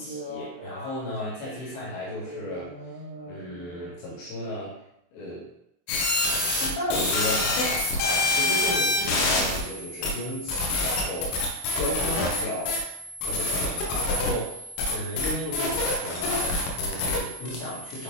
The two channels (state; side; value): late; right; 23 ms